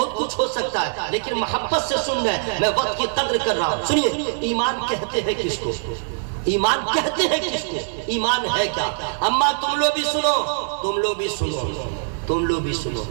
کچھ ہو سکتا ہے, لیکن محبت سے سن رہے, میں وقت کی قدر کر رہا ہوں. سنیے, ایمان کہتے ہیں کس کو؟ ایمان کہتے ہیں کس کو؟ ایمان ہے کیا؟ اما تم لوگ بھی سنو, تم لوگ بھی سنو, تم لوگ بھی سنو.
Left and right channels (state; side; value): silent; left; 64 dB below the other